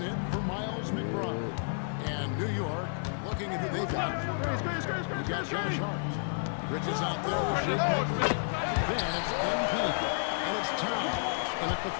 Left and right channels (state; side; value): silent; right; 57 dB below the other